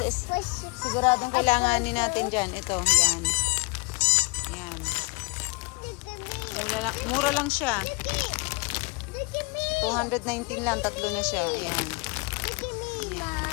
siguradong kailanganin natin dyan. Ito, yan. Yan. Mura lang siya. 219 lang. Tatlo na siya. Ayan. Ayan.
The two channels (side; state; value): right; quieter; 29.6 dB